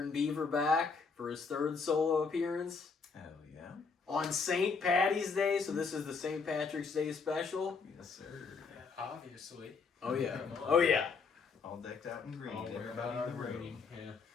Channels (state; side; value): quieter; right; 5.0 dB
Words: Beaver back for his third solo appearance. Hell yeah. On St. Patty's Day, so this is the St. Patrick's Day special. Yes, sir. Obviously. Oh yeah. Oh yeah. All decked out in green. All wearing Everybody our in the room. green.